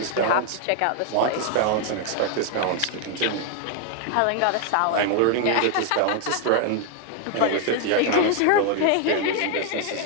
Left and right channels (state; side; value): different; both; correlation 0.00